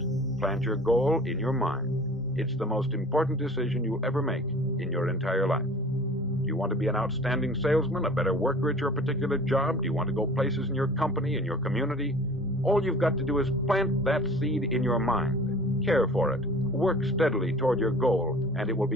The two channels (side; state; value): both; normal; correlation 0.44